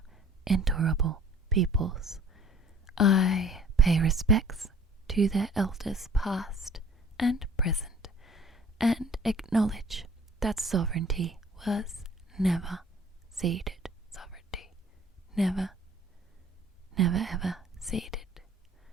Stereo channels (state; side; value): normal; both; correlation 0.51